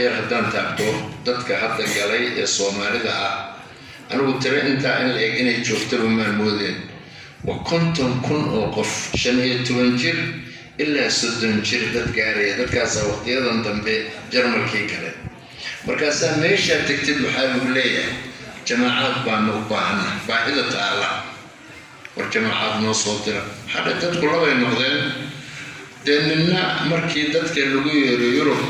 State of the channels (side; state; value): both; identical; correlation 1.00